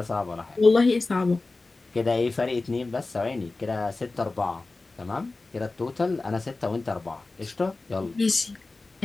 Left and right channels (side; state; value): right; quieter; 3.4 dB